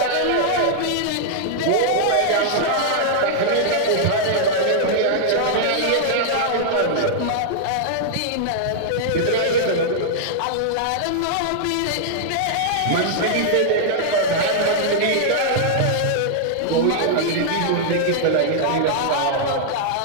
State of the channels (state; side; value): different; both; correlation -0.01